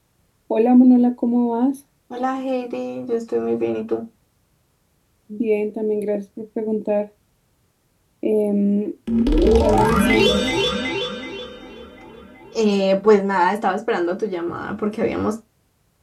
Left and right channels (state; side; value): identical; both; correlation 1.00